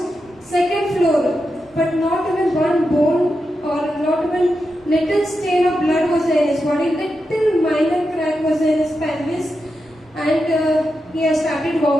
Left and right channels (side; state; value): both; normal; correlation 0.88